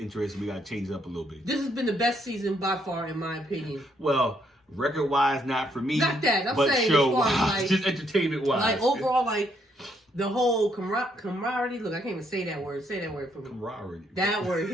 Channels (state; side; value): normal; both; correlation 0.73